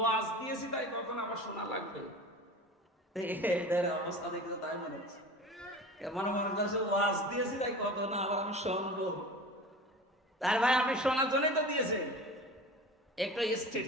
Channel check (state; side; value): normal; both; correlation 0.36